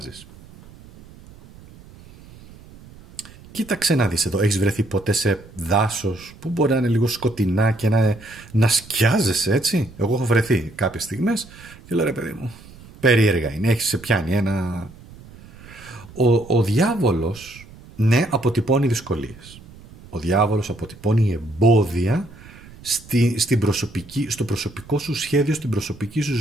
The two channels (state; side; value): noise; right; rumble, 20 dB below the sound